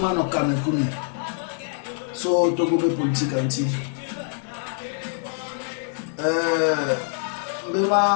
Kamekoumi. So, Togo politique anti. Mais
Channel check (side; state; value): right; silent; 62 dB below the other